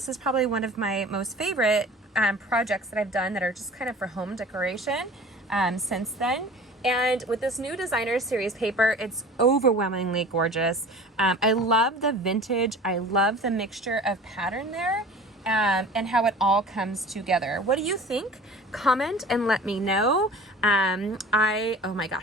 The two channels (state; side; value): normal; both; correlation 0.42